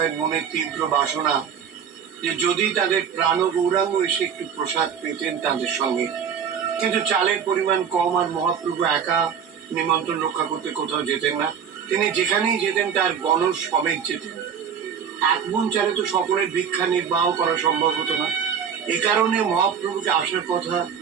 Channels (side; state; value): left; quieter; 7.6 dB